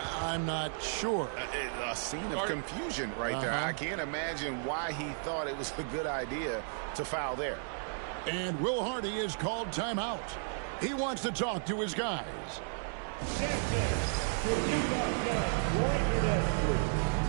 not sure. A scene of confusion right there. I can't imagine why he thought it was a good idea to foul there. And Will Hardy is called timeout. He wants to talk to his guys.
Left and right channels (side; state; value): left; silent; digital silence